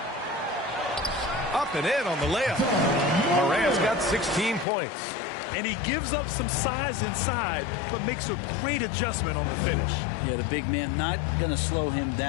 Up and in on the layup. Morant's got 16 points. And he gives up some size inside, but makes a great adjustment on the finish. Yeah, the big man not going to slow him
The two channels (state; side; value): drops out; right; at 4.7 s